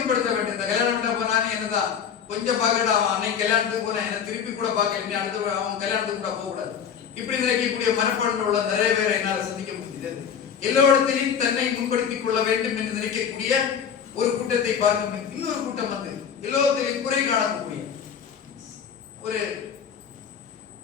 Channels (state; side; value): quieter; right; 7.6 dB